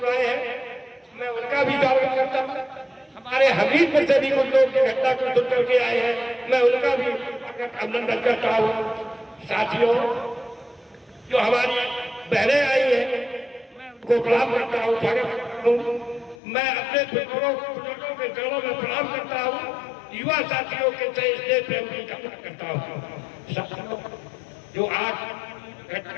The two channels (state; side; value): drops out; right; at 16.4 s